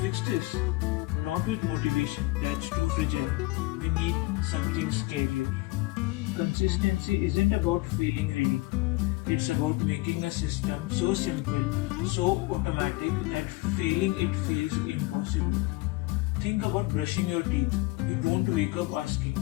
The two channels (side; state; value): right; quieter; 21.4 dB